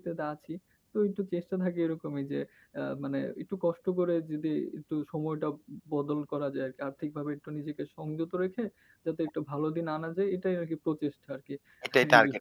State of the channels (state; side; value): identical; both; correlation 1.00